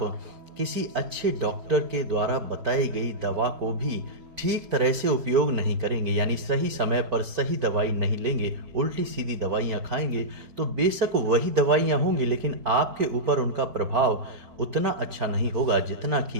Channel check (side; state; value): left; late; 4.5 ms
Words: किसी अच्छे डॉक्टर के द्वारा बताई गई दवा को भी ठीक तरह से उपयोग नहीं करेंगे, यानी सही समय पर सही दवाई नहीं लेंगे, उल्टी सीधी दवाइयाँ खाएंगे, तो बेशक वही दवाइयाँ होंगी लेकिन आपके ऊपर उनका प्रभाव उतना अच्छा नहीं होगा जितना